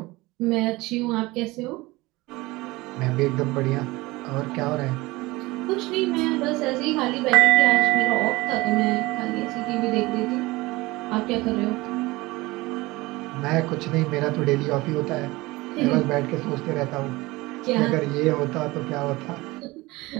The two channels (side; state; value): left; quieter; 21.1 dB